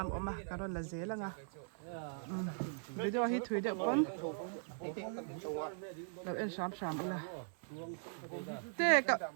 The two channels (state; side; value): silent; left; 51 dB below the other